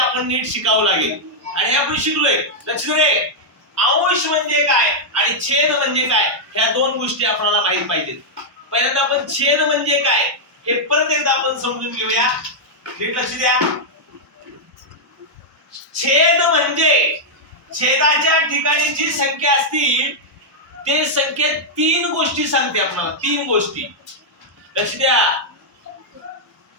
नीट शिकावं लागेल. आणि आपण शिकलोय. लक्ष दे, अंश म्हणजे काय आणि छेद म्हणजे काय ह्या दोन गोष्टी आपल्याला माहित पाहिजेत. पहिल्यांदा आपण छेद म्हणजे काय हे परत एकदा आपण समजून घेऊया. नीट लक्ष द्या. छेद म्हणजे छेदाच्या ठिकाणी जी संख्या असतील ते संख्येत 3 गोष्टी सांगते आपल्याला. 3 गोष्टी लक्ष द्या.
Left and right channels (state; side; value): normal; both; correlation -0.05